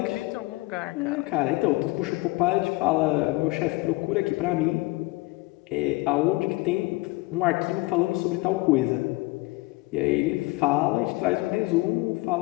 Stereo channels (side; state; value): right; quieter; 22.4 dB